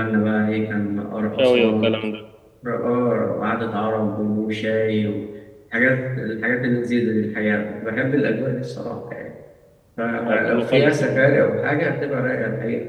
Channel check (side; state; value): both; identical; correlation 1.00